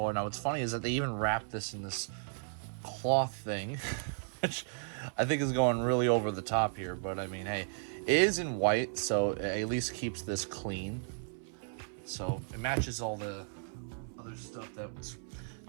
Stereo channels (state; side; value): silent; left; 55 dB below the other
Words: Now what's funny is that they even wrapped this in this cloth thing, which I think is going really over the top here, but I mean, hey, it is in white, so it at least keeps this clean. So it matches all the other stuff that's